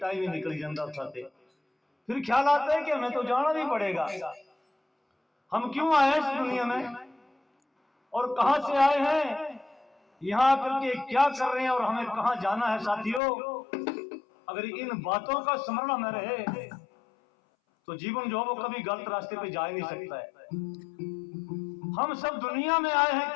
ही निकल जाता खाते, फिर ख्याल आता है कि हमें तो जाना भी पड़ेगा। हम क्यों आए इस दुनिया में और कहां से आए हैं, यहाँ आकर के क्या कर रहे हैं और हमें कहां जाना है। साथियों, अगर इन बातों का स्मरण में रहे तो जीवन जो है वो कभी गलत रास्ते पे जा ही नहीं सकता है। हम सब दुनिया में आए हैं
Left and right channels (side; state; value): right; drops out; at 13.2 s